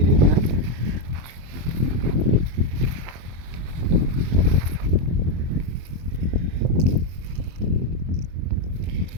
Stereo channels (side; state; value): left; late; 24 ms